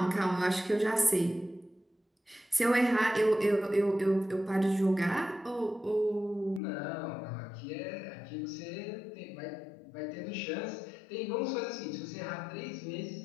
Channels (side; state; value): right; drops out; at 6.6 s